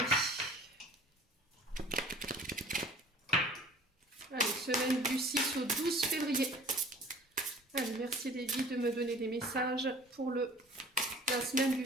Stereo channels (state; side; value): normal; both; correlation 0.47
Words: Allez, semaine du 6 au 12 février. Allez, merci les guides de me donner des messages pour la semaine du